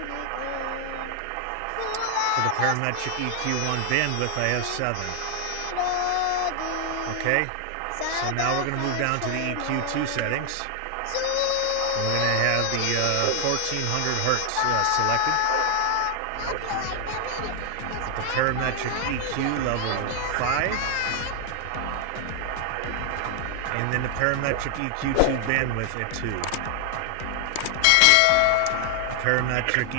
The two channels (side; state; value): both; different; correlation 0.00